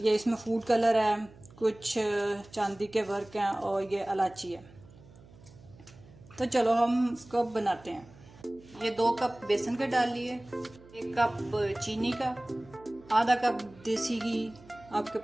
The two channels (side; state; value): right; noise; hum, 23 dB below the sound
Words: इसमें फूड कलर है, कुछ चांदी के वर्क हैं और ये इलायची है। तो चलो हम इसको बनाते हैं। ये 2 कप बेसन के डाल लिए, 1 कप चीनी का, आधा कप देसी घी, आपके